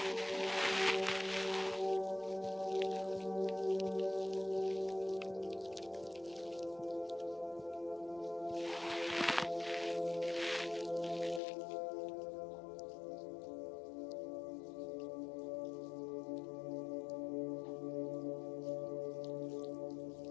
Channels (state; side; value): drops out; right; at 11.4 s